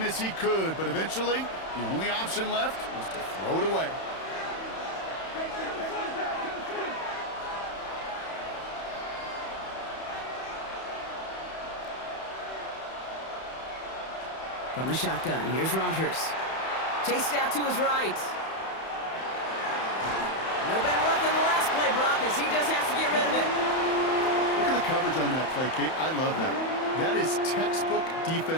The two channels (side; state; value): right; late; 31 ms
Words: as he could, but eventually, the only option left was to throw it away. From the shotgun, here's Rodgers. Chased out to his right. No better luck than the last play, Brock, as he just has to get rid of it. Look at the coverage on that play, Kate. I love that. That is textbook